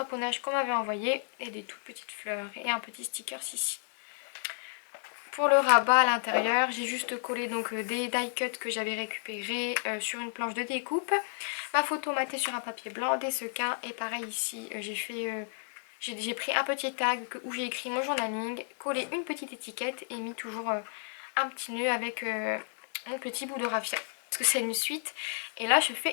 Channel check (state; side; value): silent; right; digital silence